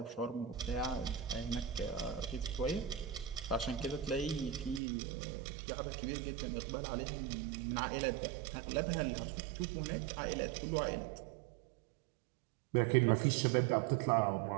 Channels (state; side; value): drops out; left; at 4.8 s